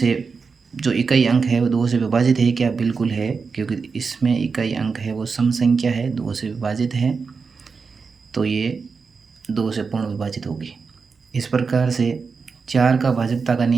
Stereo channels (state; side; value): quieter; left; 5.0 dB